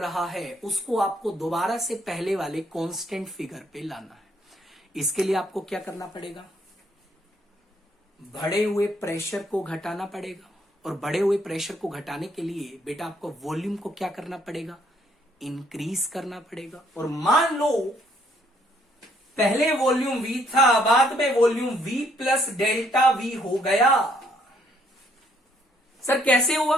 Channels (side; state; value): both; normal; correlation 0.68